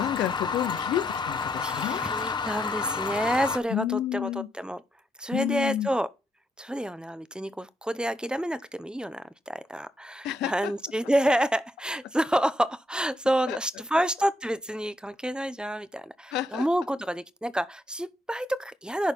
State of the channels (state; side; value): normal; both; correlation 0.77